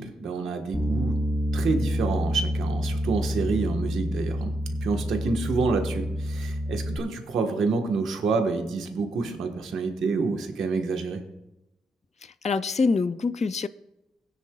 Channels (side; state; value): both; normal; correlation 0.80